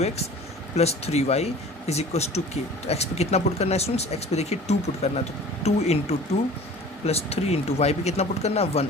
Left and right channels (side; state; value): both; normal; correlation 0.43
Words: + 3y is equals to k। तो x पे कितना पुट करना है स्टूडेंट्स, x पे देखिए 2 पुट करना है, तो 2 × 2 + 3 × y पे कितना पुट करना है 1